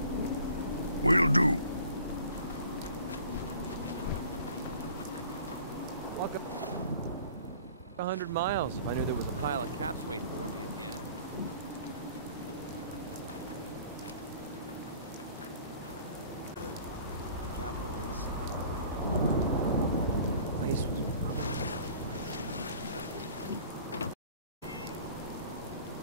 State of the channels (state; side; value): inverted; both; correlation -0.48